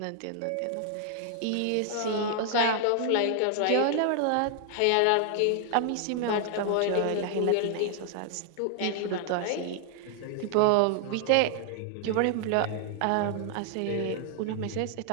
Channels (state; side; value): different; both; correlation 0.00